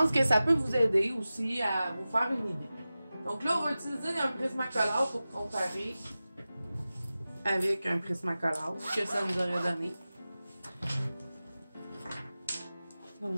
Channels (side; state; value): both; inverted; correlation -0.95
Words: que ça peut vous aider aussi à vous faire une idée. Donc là, on va utiliser un Prismacolor pour comparer avec un Prismacolor, ce que ça nous aurait donné.